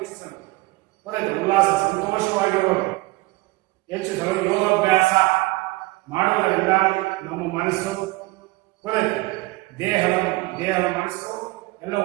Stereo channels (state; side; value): quieter; left; 22.2 dB